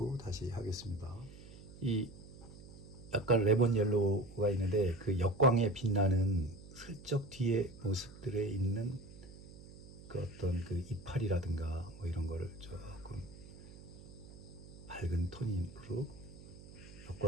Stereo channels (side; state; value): right; noise; hum, 17 dB below the sound